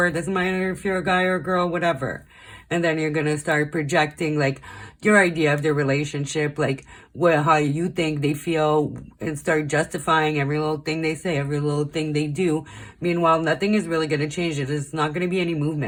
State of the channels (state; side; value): identical; both; correlation 1.00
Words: Doesn't matter if you're a guy or a girl, whatever. And then you're gonna start projecting like your idea of the relationship, like how you think they feel, and start justifying every little thing they say, every little thing they do. Meanwhile, nothing is really gonna change it. It's not gonna be any